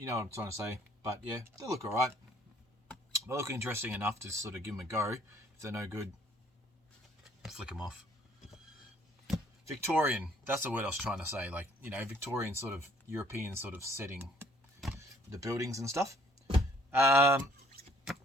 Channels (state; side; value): normal; both; correlation 0.60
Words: know what I'm trying to say. But yeah, they look alright. They look interesting enough to sort of give them a go. If they're no good, flick them off. Victorian. That's the word I was trying to say. Like, you know, Victorian sort of European sort of setting. The buildings and stuff.